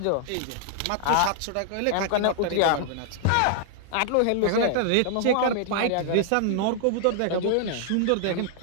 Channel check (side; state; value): both; different; correlation -0.01